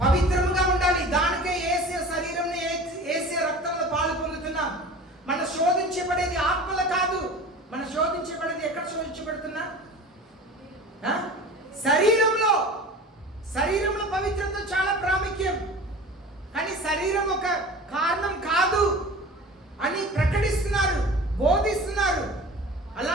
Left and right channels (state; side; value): normal; both; correlation 0.38